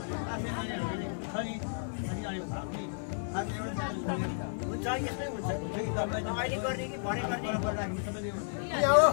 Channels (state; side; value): silent; right; 56 dB below the other